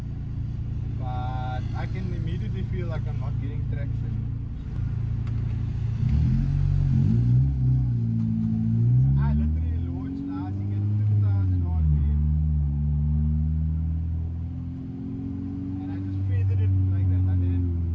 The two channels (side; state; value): both; identical; correlation 1.00